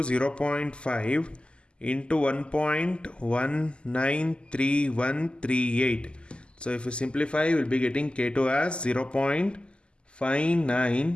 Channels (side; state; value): right; late; 0.051 ms